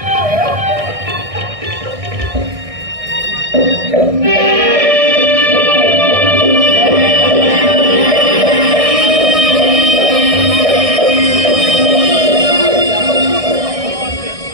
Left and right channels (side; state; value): left; late; 1.6 ms